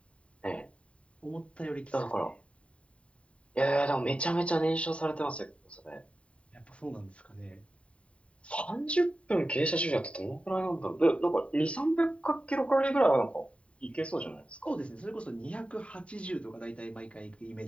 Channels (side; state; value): right; late; 0.062 ms